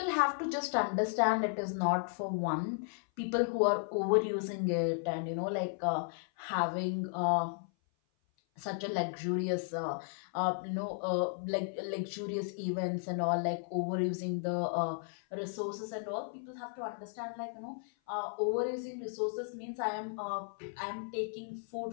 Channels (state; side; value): silent; right; 55 dB below the other